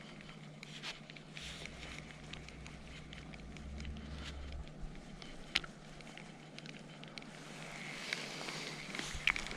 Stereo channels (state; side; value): identical; both; correlation 1.00